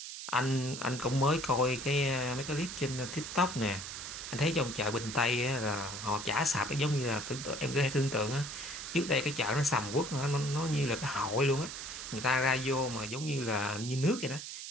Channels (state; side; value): noise; right; hiss, 8 dB below the sound